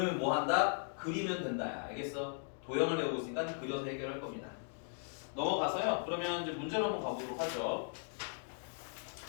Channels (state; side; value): silent; right; 53 dB below the other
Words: 뭐 한다? 그리면 된다. 알겠어? 도형을 배우고 있으니까 그려서 해결할 겁니다. 넘어가서요. 그러면 이제 문제로 한번 가보도록 하죠.